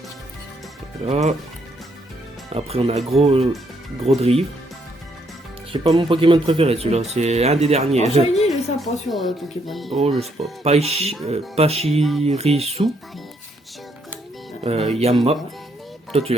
Voilà. Après, on a gros drive. C'est pas mon Pokémon préféré, celui-là. C'est un des derniers. Oh, Shiny, il est sympa sur Pokémon. Oh, je sais pas. Pachirisu. Yamma. Toi, tu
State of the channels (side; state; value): both; normal; correlation 0.72